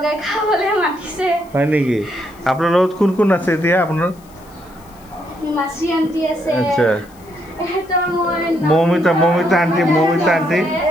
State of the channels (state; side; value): noise; left; hiss, 27 dB below the sound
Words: খাবলৈ মাতিছে। হয় নেকি? আপোনাৰ লগত কোন কোন আছে এতিয়া আপোনাৰ? মাসি আন্টি আছে। আচ্ছা। মমিতা আন্টি